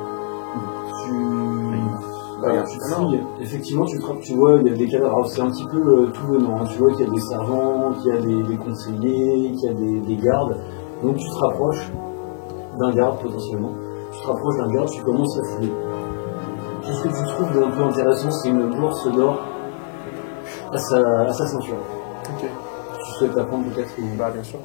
Tu. Rien. tu fouilles, effectivement, tu vois, il y a des cadavres. Alors, c'est un petit peu tout venant. Hein. Tu vois qu'il y a des servants, qu'il y a des conseillers, qu'il y a des gardes. Donc, tu te rapproches d'un garde potentiellement. Tu te rapproches d'un garde, tu commences à fouiller. Tout ce que tu trouves d'un peu intéressant, c'est une bourse d'or à sa ceinture. Ok. Tu souhaites la prendre peut-être ou... Bah, bien sûr.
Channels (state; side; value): silent; right; digital silence